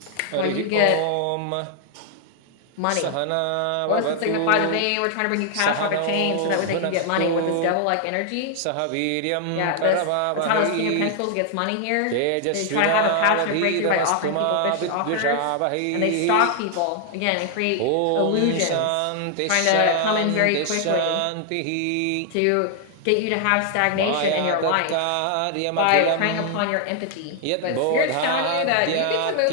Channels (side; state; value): both; different; correlation 0.00